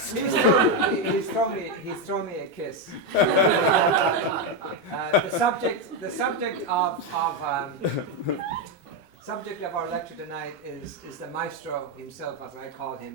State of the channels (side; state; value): both; normal; correlation 0.06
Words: He's thrown me a kiss. The subject of our lecture tonight is the maestro himself, as I call